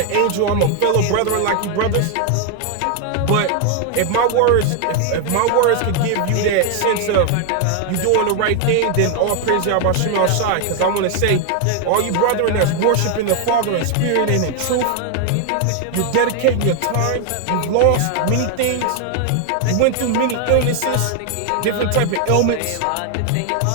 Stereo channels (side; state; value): both; different; correlation 0.00